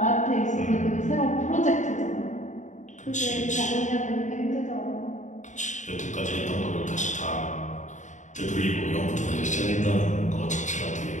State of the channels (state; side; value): late; right; 0.35 ms